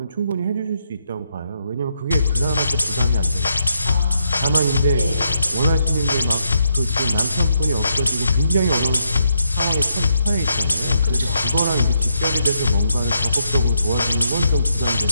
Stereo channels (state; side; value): inverted; both; correlation -0.78